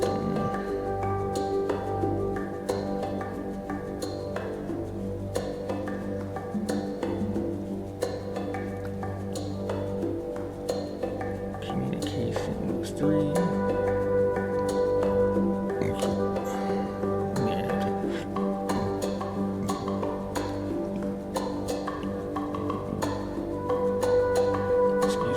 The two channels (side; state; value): both; identical; correlation 1.00